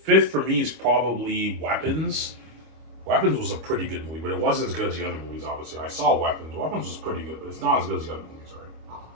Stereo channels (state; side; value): late; left; 25 ms